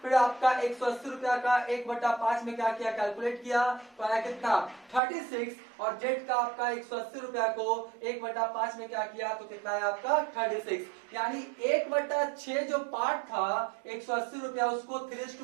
फिर आपका 180 रुपया का 1/5 में क्या किया, कैलकुलेट किया, तो आया कितना 36। और जेड का आपका 180 रुपया को 1/5 में क्या किया, तो कितना है आपका 36। यानी 1/6 जो पार्ट था 180 रुपया, उसको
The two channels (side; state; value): left; drops out; at 5.0 s